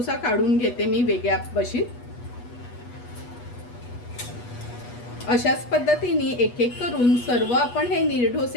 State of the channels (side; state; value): right; late; 8.2 ms